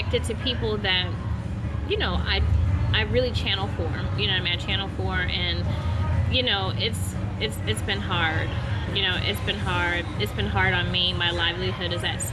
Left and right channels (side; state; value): both; identical; correlation 1.00